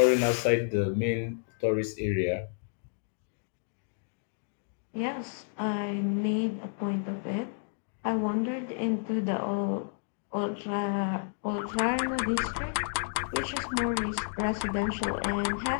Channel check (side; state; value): right; silent; digital silence